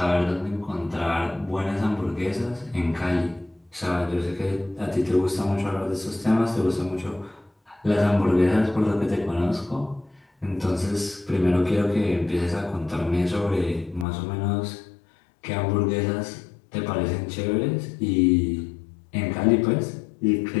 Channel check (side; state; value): right; drops out; at 14.1 s